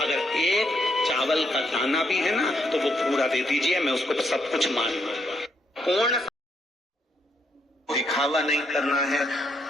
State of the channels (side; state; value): both; normal; correlation 0.76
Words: अगर एक चावल का दाना भी है ना तो वो पूरा दे दीजिए, मैं उसको तो सब कुछ मान लूंगा। पूर्ण दिखावा नहीं करना है।